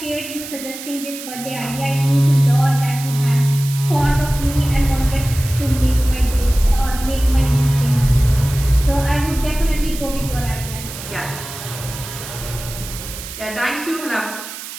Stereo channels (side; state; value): right; noise; hiss, 11 dB below the sound